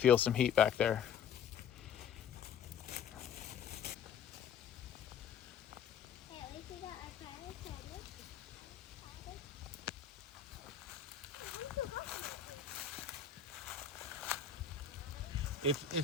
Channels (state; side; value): quieter; right; 7.9 dB